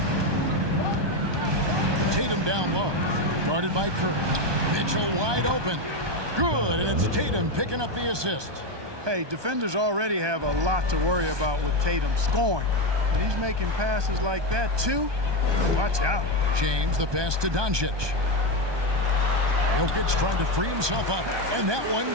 Tatum down low, guarded by Kerr. Mitchell wide open. Good, and it's Tatum picking up the assist. Hey, defenders already have a lot to worry about with Tatum scoring. When he's making passes like that, too, watch out. James, the pass to Doncic. Jokic trying to free himself up, and that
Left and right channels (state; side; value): late; left; 1.2 ms